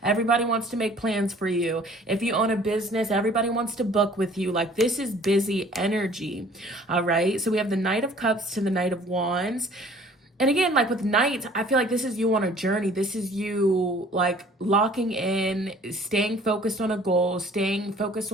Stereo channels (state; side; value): normal; both; correlation 0.53